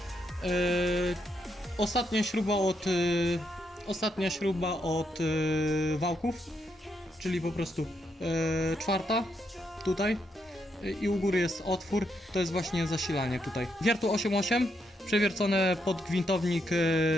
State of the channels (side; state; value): both; normal; correlation 0.79